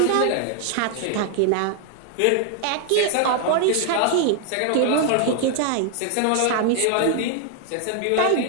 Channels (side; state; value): both; different; correlation 0.00